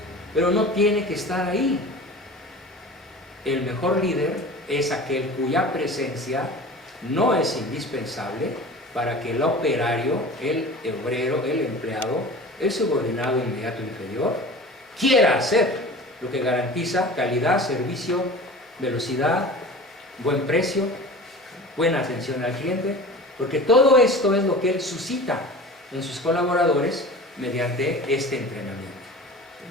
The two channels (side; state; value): both; normal; correlation 0.38